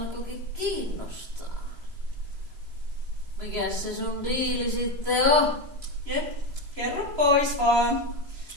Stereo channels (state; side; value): late; left; 3.0 ms